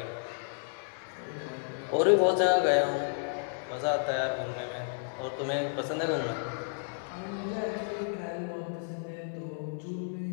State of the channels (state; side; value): silent; right; 57 dB below the other